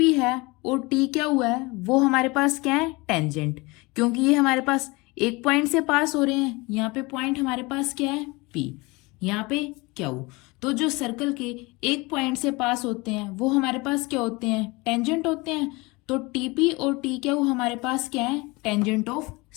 है और टी क्यू है वो हमारे पास क्या है, टेंजेंट। क्योंकि ये हमारे पास एक पॉइंट से पास हो रहे हैं, यहाँ पे पॉइंट हमारे पास क्या है, पी। यहाँ पे क्यू। तो जो सर्कल के एक पॉइंट से पास होते हैं वो हमारे पास क्या होते हैं, टेंजेंट होते हैं। तो टीपी और टी क्यू हमारे पास क्या है, टेंजेंट ऑफ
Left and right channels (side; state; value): right; quieter; 24.5 dB